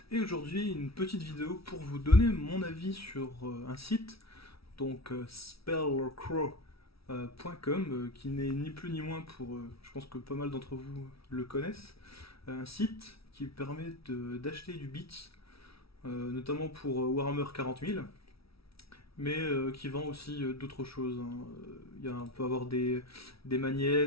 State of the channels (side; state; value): right; late; 0.76 ms